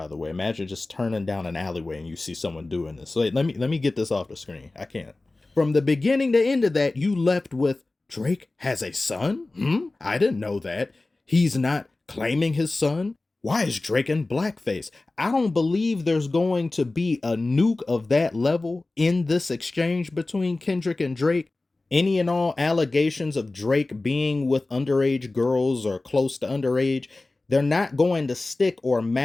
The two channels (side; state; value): right; quieter; 3.1 dB